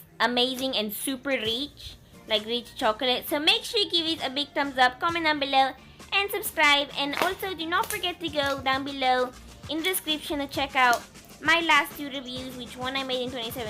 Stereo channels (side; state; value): both; identical; correlation 1.00